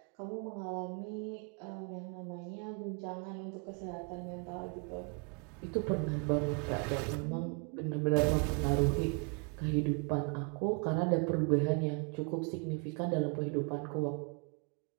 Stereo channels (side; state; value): left; quieter; 36.3 dB